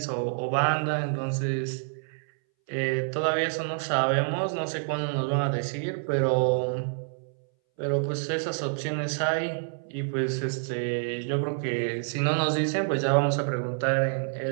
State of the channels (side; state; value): left; silent; 60 dB below the other